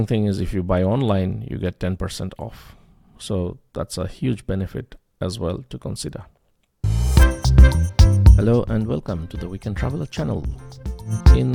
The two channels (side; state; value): both; identical; correlation 1.00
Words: thing is if you buy online, you get 10% off. So that's a huge benefit as well to consider. Hello and welcome to the Weekend Traveler channel.